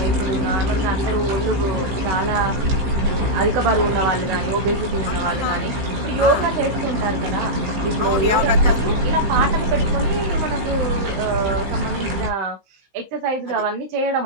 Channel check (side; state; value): left; late; 15 ms